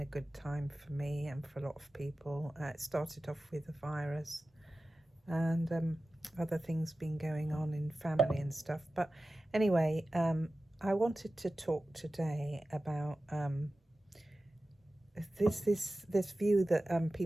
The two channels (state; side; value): normal; both; correlation 0.95